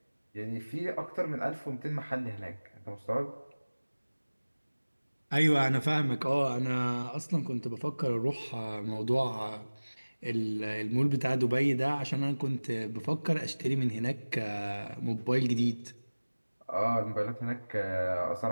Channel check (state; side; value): inverted; both; correlation -1.00